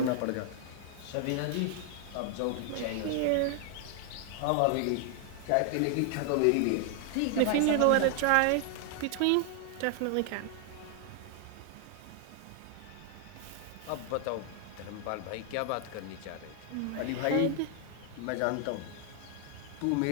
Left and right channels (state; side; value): different; both; correlation 0.00